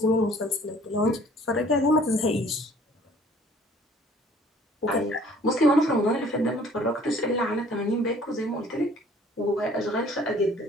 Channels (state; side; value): normal; both; correlation 0.55